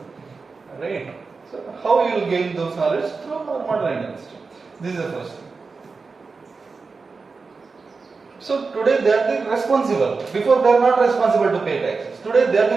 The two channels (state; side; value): quieter; left; 4.5 dB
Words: right? So how you will gain those knowledge? Through our modern industry. This is the first thing. So today they are the responsible. Before they are not responsible to pay taxes. Today they are